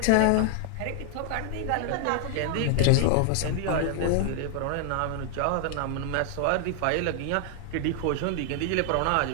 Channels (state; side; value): different; both; correlation 0.00